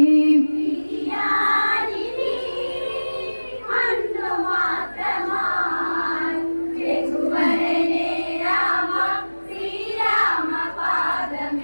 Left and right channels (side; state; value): both; inverted; correlation -1.00